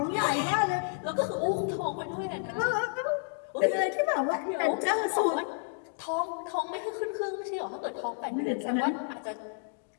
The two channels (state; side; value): silent; right; digital silence